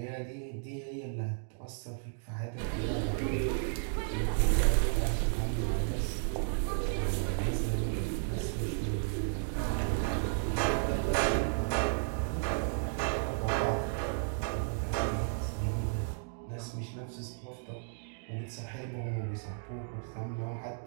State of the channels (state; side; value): silent; left; digital silence